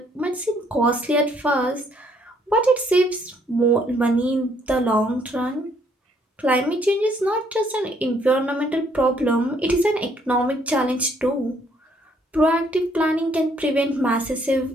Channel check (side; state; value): both; normal; correlation 0.67